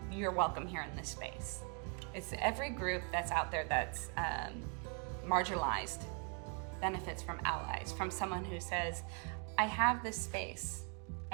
you're welcome here in this space. It's every group that's out there that's marginalized benefits from allies, from someone who says, I have this space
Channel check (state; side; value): quieter; left; 38.8 dB